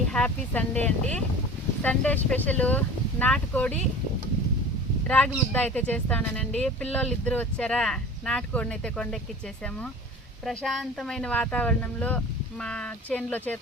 హ్యాపీ సండే అండి. సండే స్పెషల్ నాటుకోడి రాగి ముద్ద అయితే చేస్తానండి. పిల్లోళ్ళు ఇద్దరు వచ్చారా, నాటుకోడిని అయితే కొండెక్కిచ్చేసాము. ప్రశాంతమైన వాతావరణంలో మా చేనులో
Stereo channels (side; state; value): both; normal; correlation 0.39